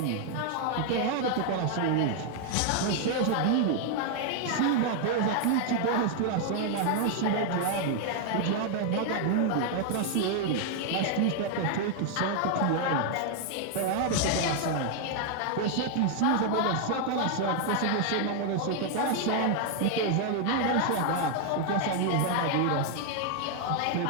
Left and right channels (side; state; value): both; different; correlation 0.00